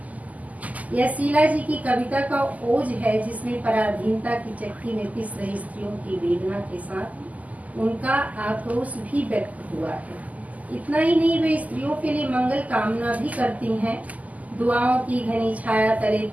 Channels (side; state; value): left; late; 0.076 ms